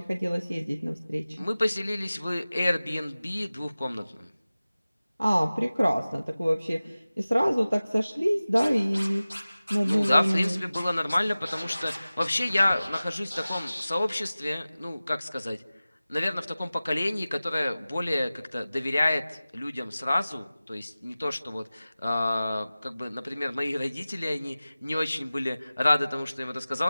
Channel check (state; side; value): inverted; both; correlation -0.97